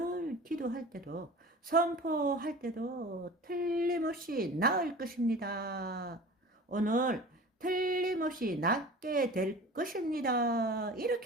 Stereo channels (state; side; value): normal; both; correlation 0.39